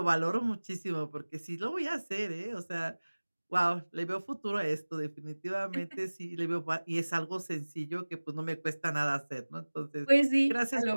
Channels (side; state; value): both; inverted; correlation -1.00